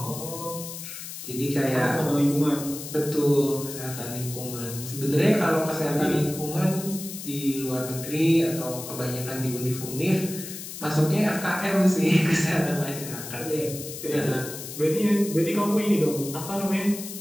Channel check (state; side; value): noise; left; hiss, 10 dB below the sound